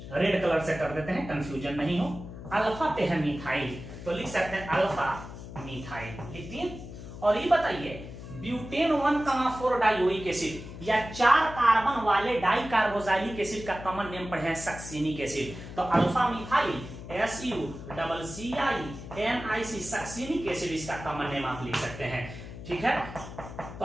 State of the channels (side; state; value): left; noise; hum, 12 dB below the sound